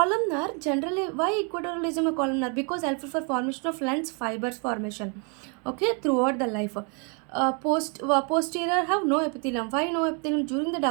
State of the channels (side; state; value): left; quieter; 36.8 dB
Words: generally, why equatorial region a columnar? Because helpful for formation of lens fibers formation. Okay, throughout the life. Posterior have no epithelium. Why no epithelium? During the